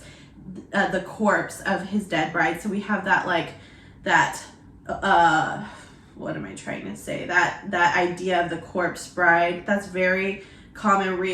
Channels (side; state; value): both; identical; correlation 1.00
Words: the corpse of his dead bride. So we have that, like, that what am I trying to say? That idea of the corpse bride. That's very common